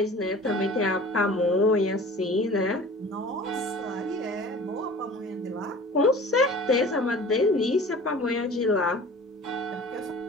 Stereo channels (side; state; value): both; normal; correlation 0.43